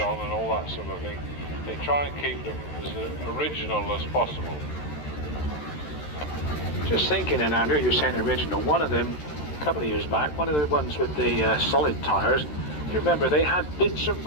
and all that sort of thing. They try and keep them as original as possible. Just thinking, and Andrew, you're saying original. One of them, a couple of years back, one of the ones with the solid tyres, you remember they had bits of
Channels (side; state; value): right; late; 13 ms